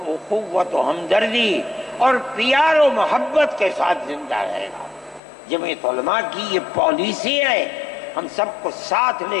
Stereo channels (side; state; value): right; drops out; at 5.2 s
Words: اخوت و ہمدردی اور پیار و محبت کے ساتھ زندہ رہے گا. جمعیت علماء کی یہ پالیسی ہے, ہم سب کو ساتھ